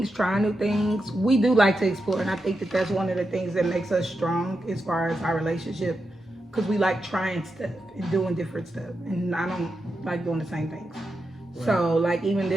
trying new things. We do like to explore, and I think that that's one of the things that makes us strong as far as our relationship, because we like trying stuff and doing different stuff, and I don't like doing the same things. Right. So like even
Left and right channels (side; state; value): both; normal; correlation 0.87